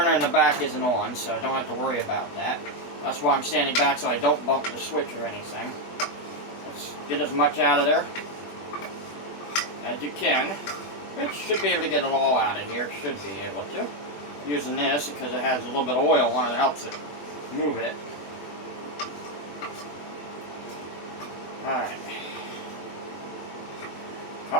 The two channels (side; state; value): right; late; 20 ms